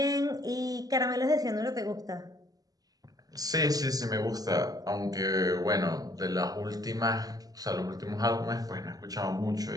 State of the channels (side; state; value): left; late; 0.18 ms